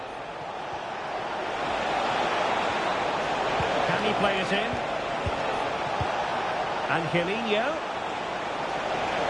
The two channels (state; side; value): identical; both; correlation 1.00